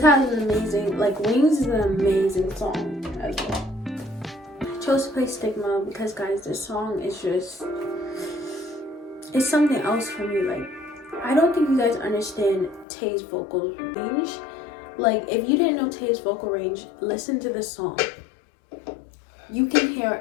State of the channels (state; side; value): drops out; right; at 12.9 s